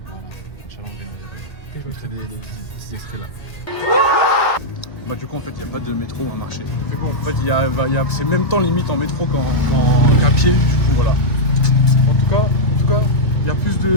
Voilà, Inch'Allah, je mettrai des extraits là. Bah du coup en fait il n'y a pas de métro à marcher. C'est quoi en fait c'est même temps limite en métro qu'à pied, du coup voilà. En tout cas, il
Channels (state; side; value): late; right; 1.8 ms